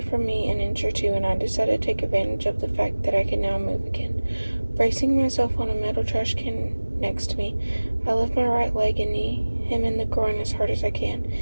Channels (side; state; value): both; inverted; correlation -1.00